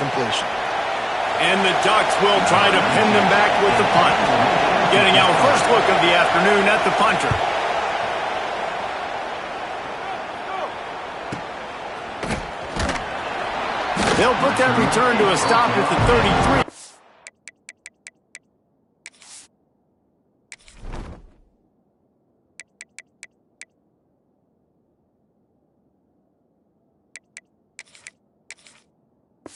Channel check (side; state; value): both; identical; correlation 1.00